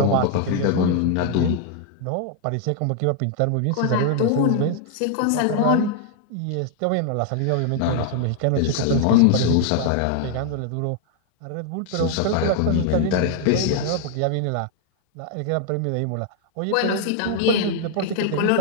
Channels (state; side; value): different; both; correlation 0.00